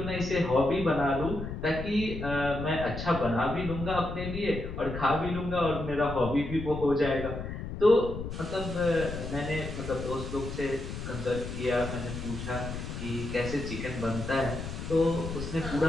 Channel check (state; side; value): noise; left; rumble, 7 dB below the sound